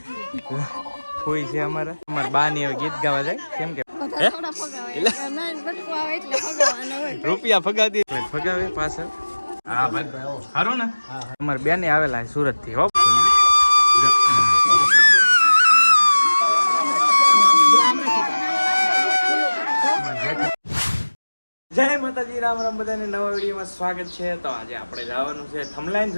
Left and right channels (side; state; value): both; inverted; correlation -1.00